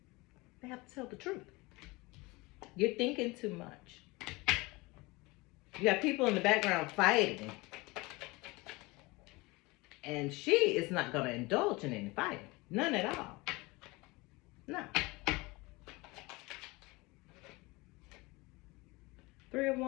They have to tell the truth. You're thinking too much. You got people in the background fighting. And she is not going to indulge in any fighting. None at all. No. Three of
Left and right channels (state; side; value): quieter; right; 23.6 dB